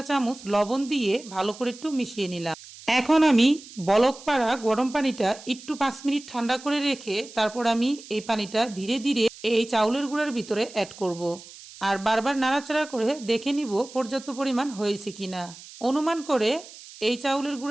চামচ লবণ দিয়ে ভালো করে একটু মিশিয়ে নিলাম। এখন আমি বলক পাড়া গরম পানিটা একটু 5 মিনিট ঠান্ডা করে রেখে তারপর আমি এই পানিটা ধীরে ধীরে এই চাউলের গুঁড়ার ভিতরে অ্যাড করব। আর বারবার নাড়াচাড়া করে দেখে নিব পর্যাপ্ত পরিমাণ হয়েছে কিনা। অনুমান করে এই চাউলের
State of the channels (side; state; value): right; noise; hiss, 18 dB below the sound